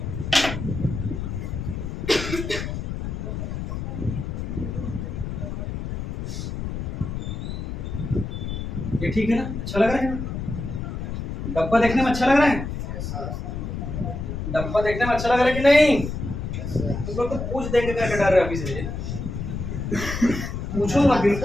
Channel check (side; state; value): left; noise; rumble, 5 dB below the sound